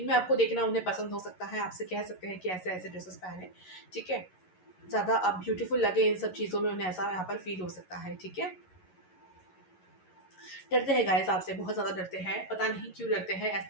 आपको देखना उन्हें पसंद हो सकता है। आपसे कह सकते हैं कि ऐसे ऐसे ड्रेसेस पहने, ठीक है। ज़्यादा आप ब्यूटीफुल लगे इन सब चीज़ों में, उन्हें ऐसा यहाँ पर फील हो सकता है, ठीक है। डरते हैं गाइस आपसे, बहुत ज़्यादा डरते हैं, पता नहीं क्यों डरते हैं।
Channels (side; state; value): right; late; 11 ms